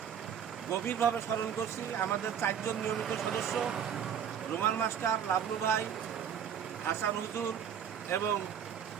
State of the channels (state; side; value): quieter; left; 8.4 dB